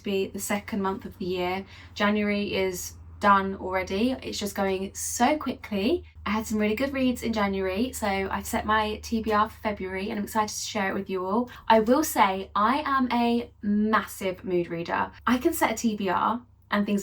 be the second month of the year. January is done already. It's just going so quickly. I had some really good reads in January, so I've set my TBR for February and I'm excited to share it with you all. I will say I am a massive mood reader. I can set a TBR and things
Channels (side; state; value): both; identical; correlation 1.00